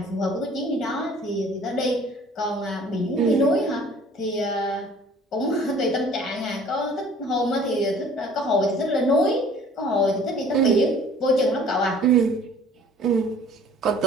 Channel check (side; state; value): both; normal; correlation 0.51